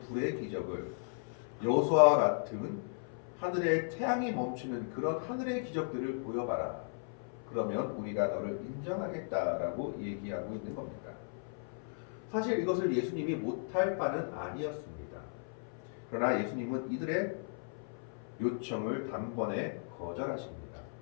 불의 기적을, 여호수아와 같은 하늘에 태양이 멈추는 그런 하늘의 기적들을 보여봐라. 그러면 우리가 너를 인정하겠다라고 얘기하고 있는 겁니다. 사실 이것을 예수님이 못할 바는 아니었습니다. 그러나 예수님은 이들의 요청을 단번에 거절하십니다.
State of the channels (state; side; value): silent; right; 54 dB below the other